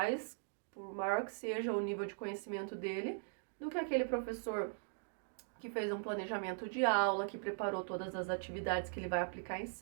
que seja o nível de conhecimento dele, do que aquele professor que fez um planejamento de aula, que preparou todas as atividades que ele vai aplicar em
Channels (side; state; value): left; silent; digital silence